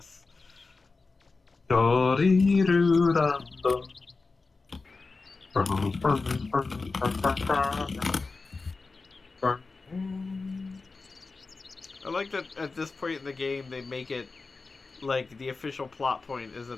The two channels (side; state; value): right; quieter; 4.0 dB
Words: Do-dee-doo-dum-dum. I like that at this point in the game they make it like the official plot point is